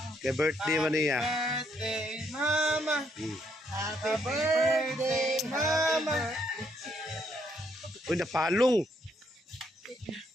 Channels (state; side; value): normal; both; correlation 0.73